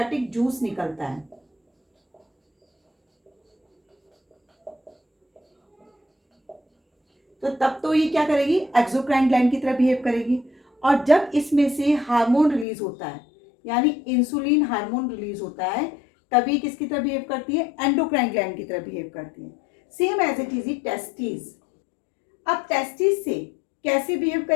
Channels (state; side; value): drops out; right; at 12.7 s